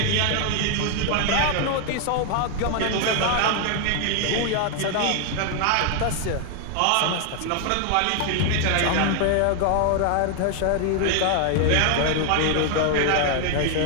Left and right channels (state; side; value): different; both; correlation 0.00